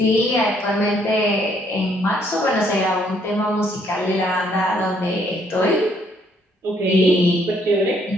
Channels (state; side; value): normal; both; correlation 0.67